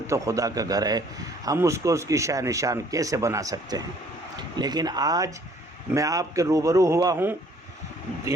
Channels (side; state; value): both; normal; correlation 0.59